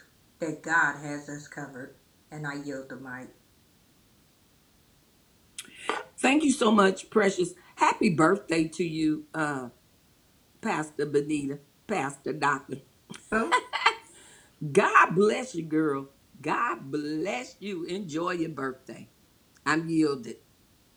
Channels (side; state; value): both; identical; correlation 1.00